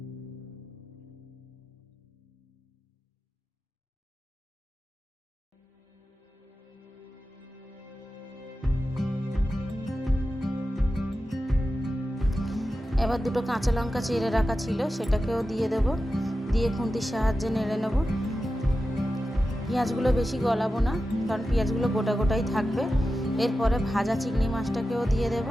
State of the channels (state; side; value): normal; both; correlation 0.92